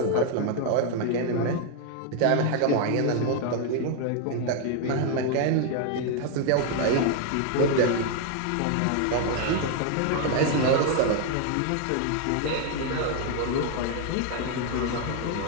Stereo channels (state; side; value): different; both; correlation 0.00